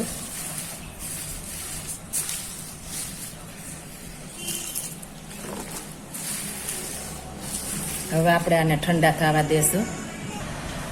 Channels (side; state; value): both; identical; correlation 1.00